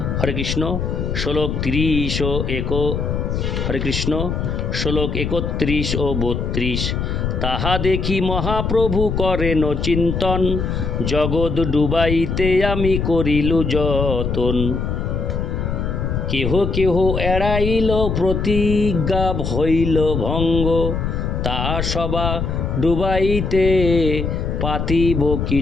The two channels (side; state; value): left; noise; rumble, 2 dB below the sound